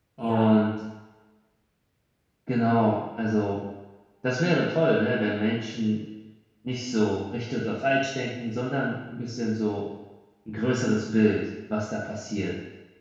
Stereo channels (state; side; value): identical; both; correlation 1.00